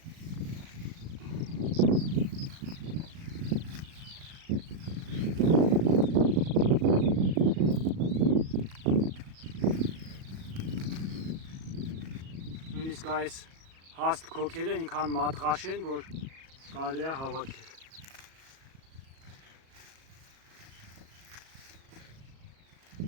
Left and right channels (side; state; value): left; late; 37 ms